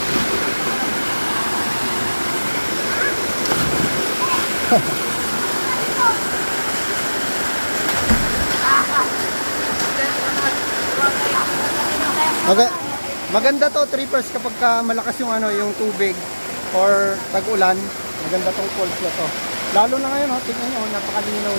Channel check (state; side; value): inverted; both; correlation -1.00